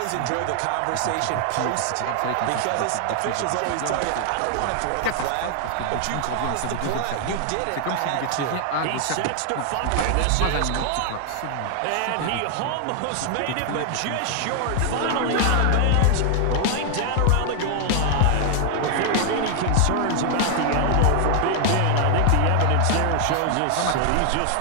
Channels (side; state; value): both; different; correlation 0.00